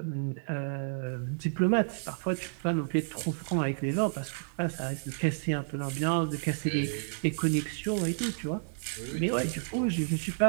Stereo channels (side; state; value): left; silent; 57 dB below the other